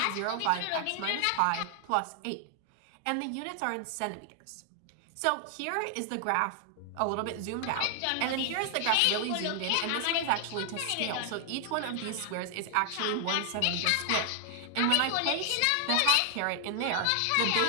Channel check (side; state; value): both; different; correlation 0.00